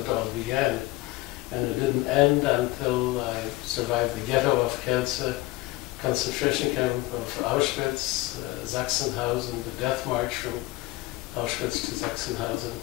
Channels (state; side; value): quieter; right; 19.0 dB